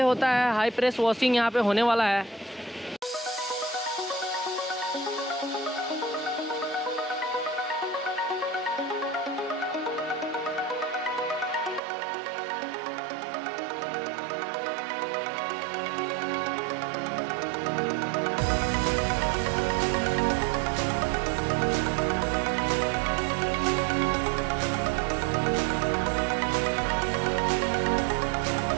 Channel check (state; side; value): drops out; left; at 11.8 s